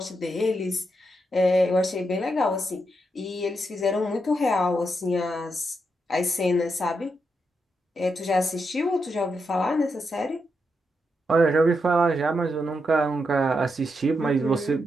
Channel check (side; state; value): both; normal; correlation 0.83